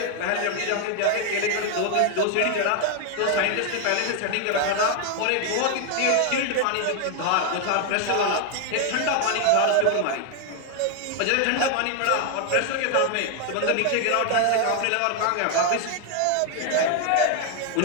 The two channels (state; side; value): different; both; correlation 0.01